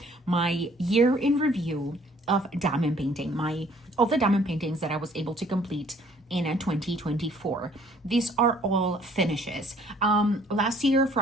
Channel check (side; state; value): both; normal; correlation 0.59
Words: my year in review of diamond painting, of the diamond paintings that I was able to complete in 2024. These are all finishes. Last year